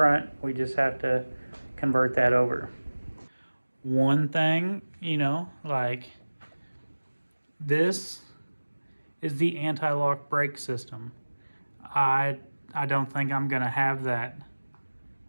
we just have to convert that over. One thing, like this is the anti-lock brake system. I don't think I'm gonna have that.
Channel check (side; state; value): both; inverted; correlation -1.00